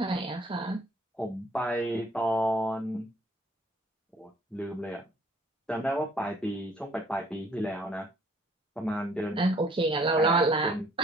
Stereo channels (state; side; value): normal; both; correlation 0.60